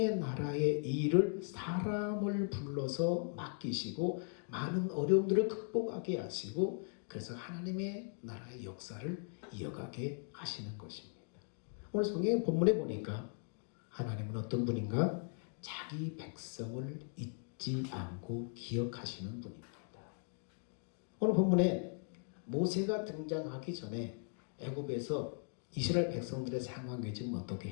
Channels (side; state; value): right; silent; 52 dB below the other